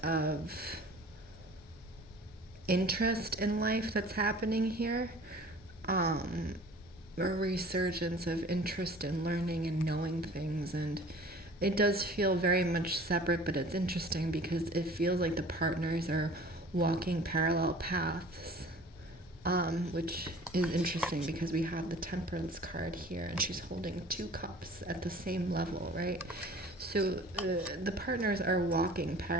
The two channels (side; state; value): both; normal; correlation 0.46